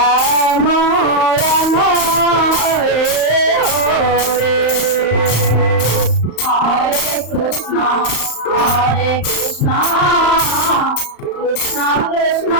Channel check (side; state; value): right; late; 34 ms